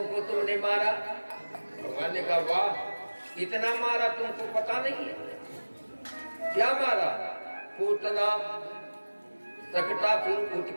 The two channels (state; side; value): inverted; both; correlation -1.00